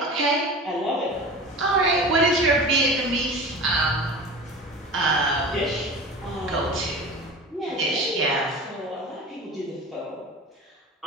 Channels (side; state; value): both; normal; correlation 0.35